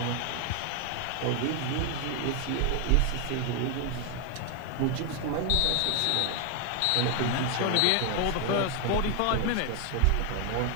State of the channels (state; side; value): different; both; correlation 0.00